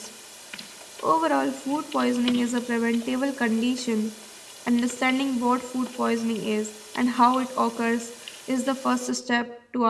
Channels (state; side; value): identical; both; correlation 1.00